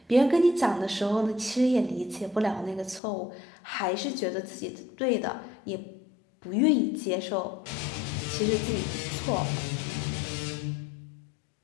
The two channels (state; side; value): drops out; right; at 3.0 s